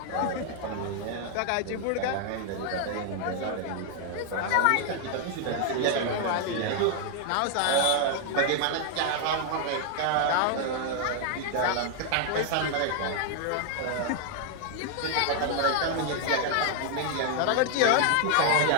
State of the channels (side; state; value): both; different; correlation 0.00